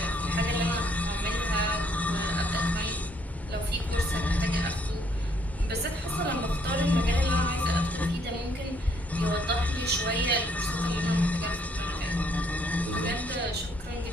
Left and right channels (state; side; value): normal; both; correlation 0.67